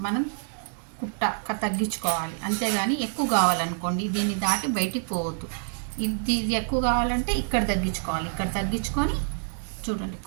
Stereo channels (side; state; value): left; silent; digital silence